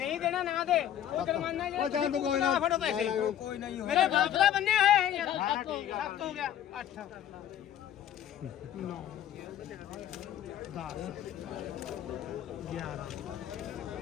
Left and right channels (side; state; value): right; quieter; 10.8 dB